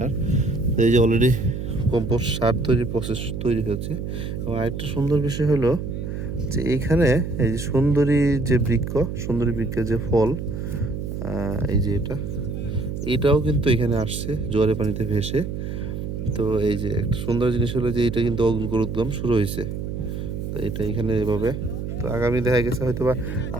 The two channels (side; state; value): right; noise; hum, 5 dB below the sound